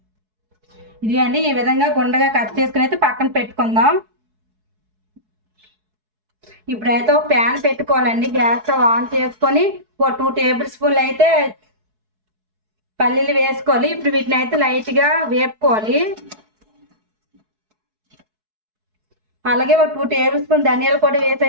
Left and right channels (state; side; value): late; left; 4.7 ms